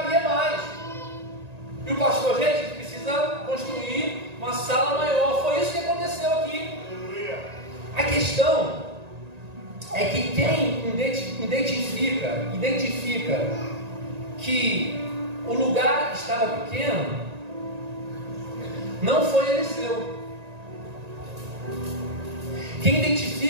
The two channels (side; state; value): left; late; 1.9 ms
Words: mais. E o pastor, gente, precisa construir uma sala maior. Foi isso que aconteceu aqui. A questão é que quem identifica que o lugar estava pequeno não foi Eliseu. Quem